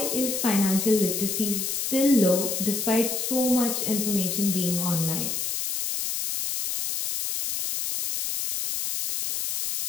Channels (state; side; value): noise; left; hiss, 2 dB below the sound